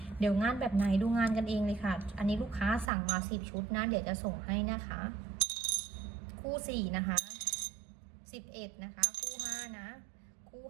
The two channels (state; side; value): drops out; left; at 2.9 s